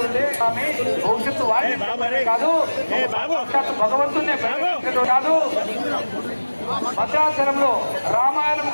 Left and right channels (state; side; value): inverted; both; correlation -1.00